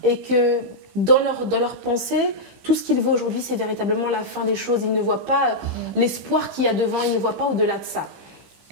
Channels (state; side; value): late; left; 15 ms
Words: et que dans leur pensée, tout ce qu'ils voient aujourd'hui, c'est véritablement la fin des choses. Ils ne voient pas l'espoir qu'il y a devant, ils ne voient pas au-delà de ça.